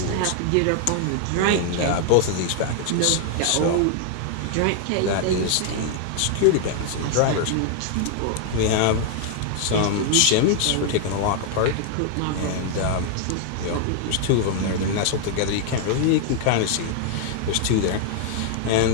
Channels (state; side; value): different; both; correlation 0.00